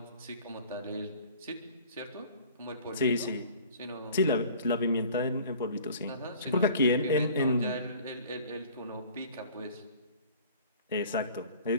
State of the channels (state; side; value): inverted; both; correlation -0.48